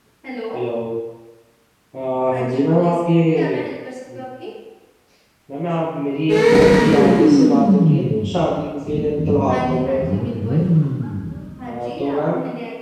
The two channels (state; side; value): identical; both; correlation 1.00